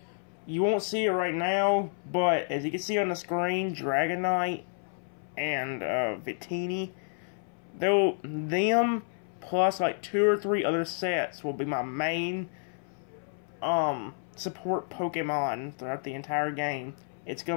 You won't see it right now, but as you can see on the screen, Dragonite and Victini, them plus like 2 or 3 other sets will be my main support Pokemon throughout the entire game. It's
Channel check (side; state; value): right; silent; 58 dB below the other